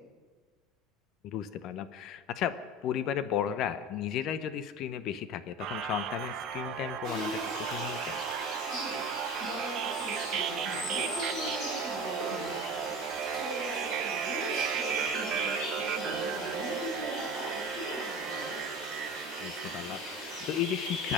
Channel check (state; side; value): normal; both; correlation 0.33